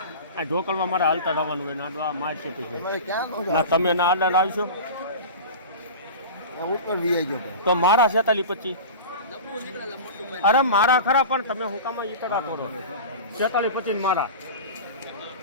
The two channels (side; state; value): both; inverted; correlation -0.32